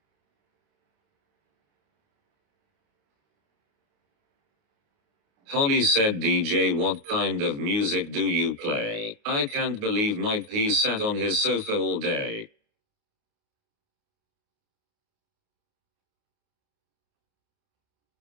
Holly said, DJ, what kind of music do you play? I can't believe Mike P sat on his sofa all day.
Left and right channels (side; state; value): left; late; 28 ms